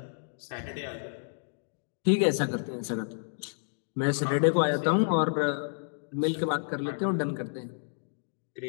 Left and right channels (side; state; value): right; silent; digital silence